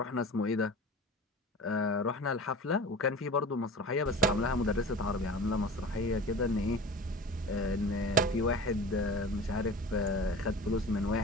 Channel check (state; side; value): normal; both; correlation 0.36